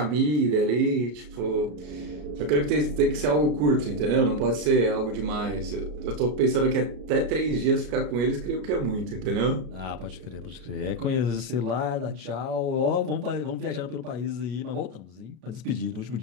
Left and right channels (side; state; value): left; late; 33 ms